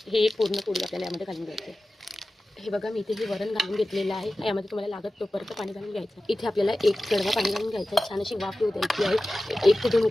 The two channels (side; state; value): both; normal; correlation 0.95